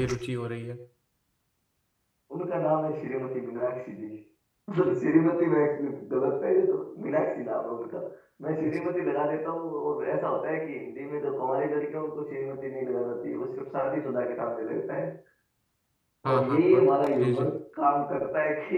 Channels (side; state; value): both; identical; correlation 1.00